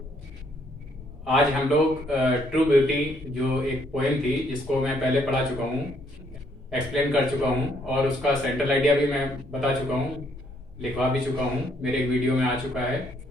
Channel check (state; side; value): normal; both; correlation 0.69